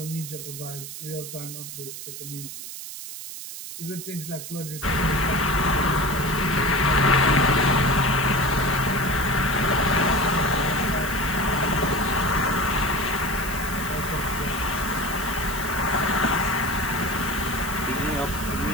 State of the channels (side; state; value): right; noise; hiss, 10 dB below the sound